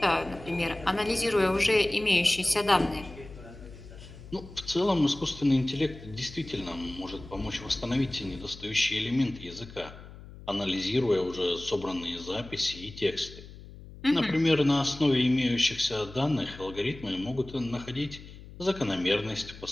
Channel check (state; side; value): noise; left; hum, 16 dB below the sound